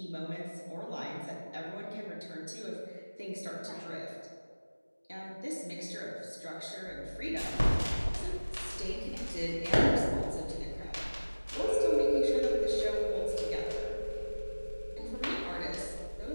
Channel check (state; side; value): inverted; both; correlation -1.00